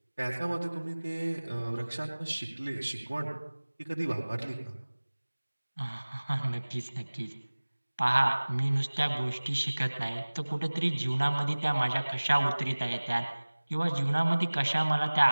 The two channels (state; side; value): inverted; both; correlation -1.00